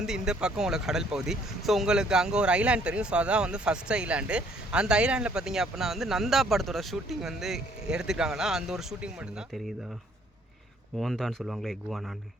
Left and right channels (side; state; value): both; normal; correlation 0.63